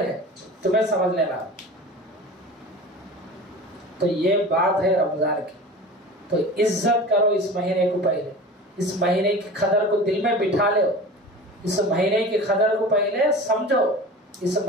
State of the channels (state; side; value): normal; both; correlation 0.36